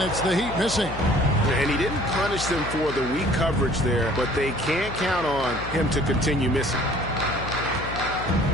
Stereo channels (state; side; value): noise; left; hum, 10 dB below the sound